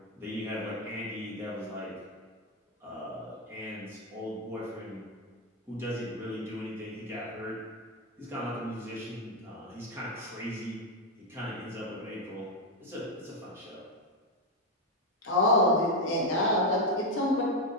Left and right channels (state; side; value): normal; both; correlation 0.06